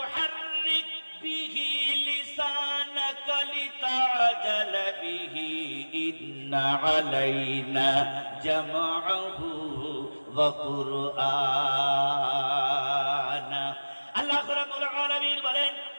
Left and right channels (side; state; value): both; inverted; correlation -1.00